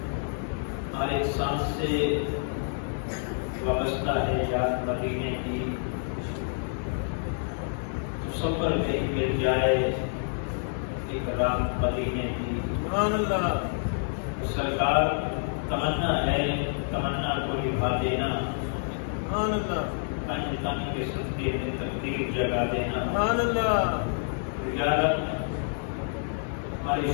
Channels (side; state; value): right; silent; 59 dB below the other